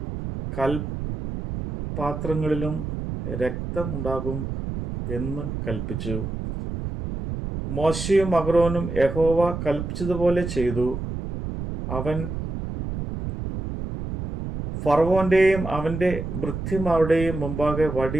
കൽപാത്രങ്ങളിലും രക്തമുണ്ടാകും എന്ന് കൽപ്പിച്ചു. മോശയും അഹരോനും യഹോവ കൽപ്പിച്ചതുപോലെ ചെയ്തു. അവൻ ഫറവോന്റെയും അവന്റെ ഭൃത്യന്മാരുടെയും മുമ്പാകെ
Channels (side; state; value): right; noise; rumble, 6 dB below the sound